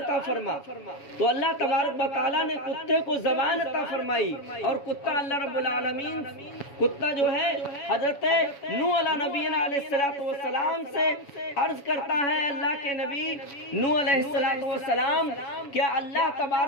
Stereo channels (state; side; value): late; right; 7.1 ms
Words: فرما۔ تو اللہ تبارک و تعالیٰ نے کتے کو زبان عطا فرمائی، اور کتا اللہ رب العالمین، کتا جو ہے حضرت نوح علیہ نبینا علیہ السلام سے عرض کرتا ہے، اللہ کے نبی نوح علیہ السلام کیا اللہ